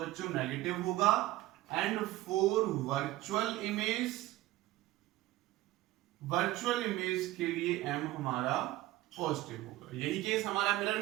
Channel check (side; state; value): left; quieter; 16.6 dB